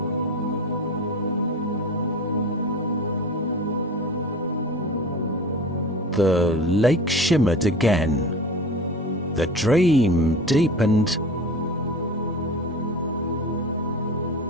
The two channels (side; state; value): both; normal; correlation 0.34